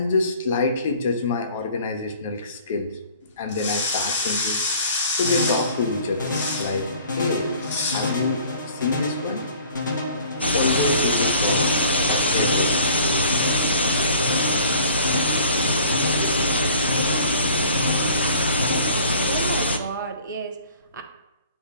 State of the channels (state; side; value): inverted; both; correlation -0.50